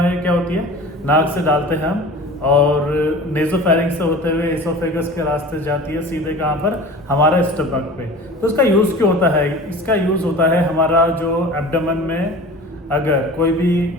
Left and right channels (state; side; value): normal; both; correlation 0.39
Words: क्या होती है, नाक से डालते हैं हम और नेजोफेरिंक्स से होते हुए एसोफेगस के रास्ते जाती है सीधे कहाँ पर, हमारा स्टमक पे। तो इसका यूज़ क्यों होता है? इसका यूज़ होता है हमारा जो एब्डोमेन में अगर कोई भी